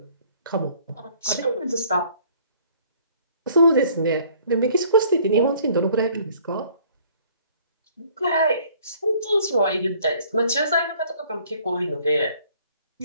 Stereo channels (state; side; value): inverted; both; correlation -0.57